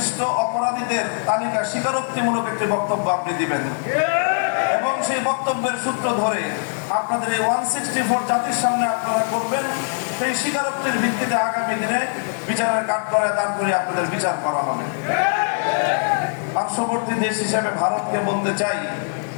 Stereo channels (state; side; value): silent; right; digital silence